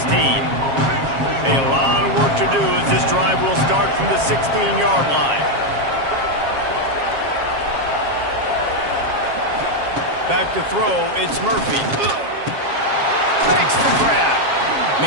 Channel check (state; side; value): late; left; 7.4 ms